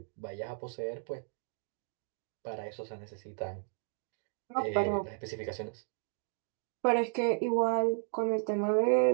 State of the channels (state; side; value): silent; left; digital silence